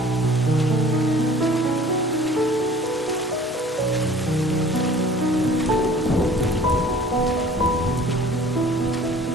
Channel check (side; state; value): both; normal; correlation 0.49